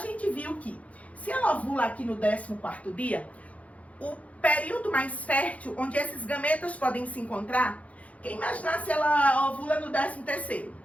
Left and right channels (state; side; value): late; right; 0.066 ms